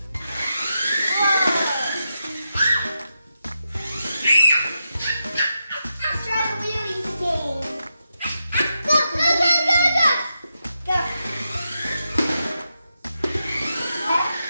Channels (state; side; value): inverted; both; correlation -0.86